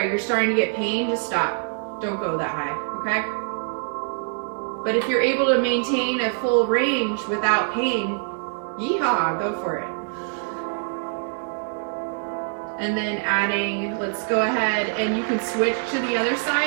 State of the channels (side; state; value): left; silent; digital silence